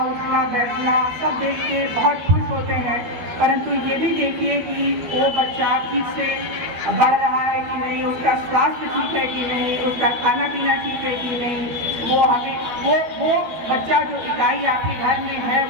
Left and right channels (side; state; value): left; late; 12 ms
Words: बैठना सब देख के बहुत खुश होते हैं, परंतु ये भी देखिए कि वो बच्चा ठीक से बढ़ रहा है कि नहीं, उसका स्वास्थ्य ठीक है कि नहीं, उसका खाना पीना ठीक है कि नहीं। वो हमें वो बच्चा जो इकाई आपके घर में है